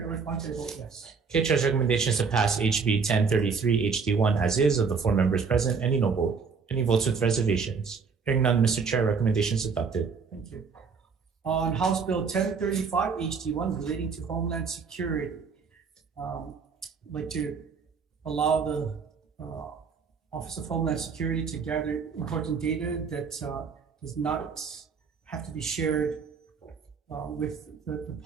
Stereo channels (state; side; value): quieter; left; 5.5 dB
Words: Elefante, I vote yes. Okay, Chair's recommendations to pass HB 1033 HD1 as is of the 4 members present. Any no vote? Any votes with reservations? Hearing none, Mr. Chair, recommendations adopted. Thank you. On House Bill 1035 HD1 relating to Homeland Security, I'd like to allow the Office of Homeland Security to gather important data that does not have to be shared with the